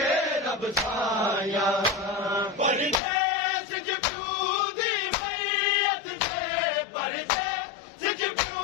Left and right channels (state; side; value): drops out; right; at 3.0 s